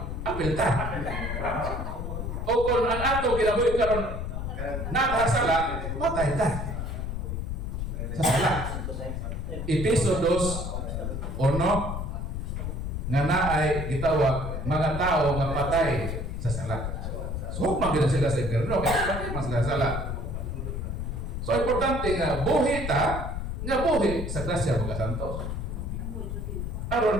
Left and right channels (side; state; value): left; noise; rumble, 4 dB below the sound